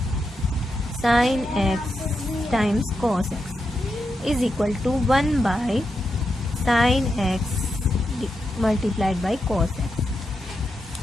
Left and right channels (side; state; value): both; normal; correlation 0.86